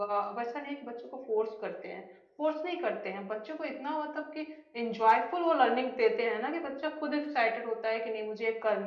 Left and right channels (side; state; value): both; identical; correlation 1.00